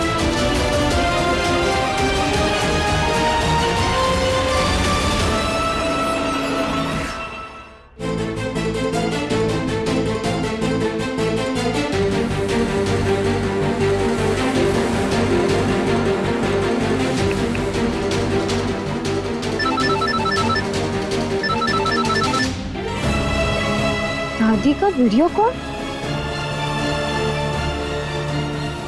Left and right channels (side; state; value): both; identical; correlation 1.00